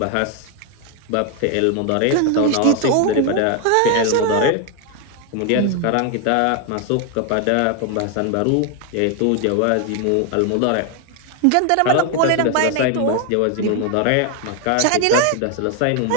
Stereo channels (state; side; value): different; both; correlation 0.01